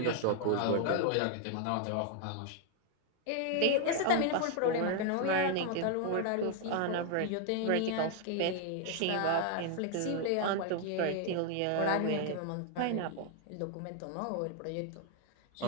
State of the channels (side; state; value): both; different; correlation 0.00